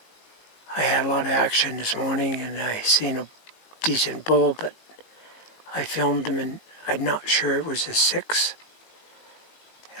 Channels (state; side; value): late; right; 19 ms